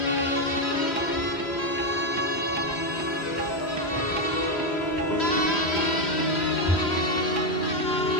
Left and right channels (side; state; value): right; late; 3.1 ms